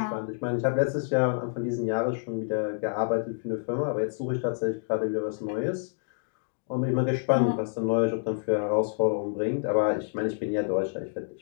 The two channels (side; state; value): right; silent; digital silence